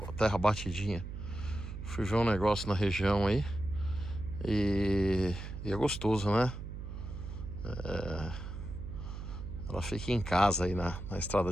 terra batidinha. Fui ver um negócio na região aí e é gostoso, né? Ela fica em casa aí na estrada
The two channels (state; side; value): noise; right; hum, 8 dB below the sound